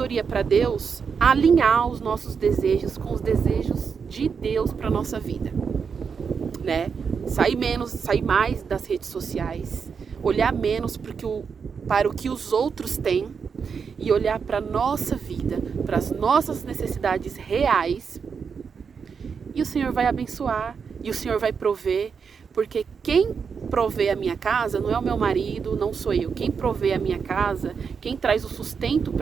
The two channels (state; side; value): quieter; left; 6.1 dB